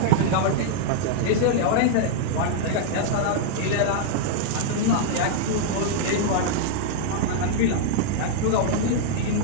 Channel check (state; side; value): different; both; correlation -0.01